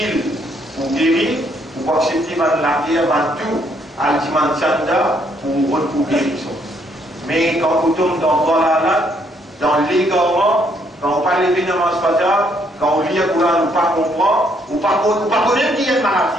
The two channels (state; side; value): normal; both; correlation 0.70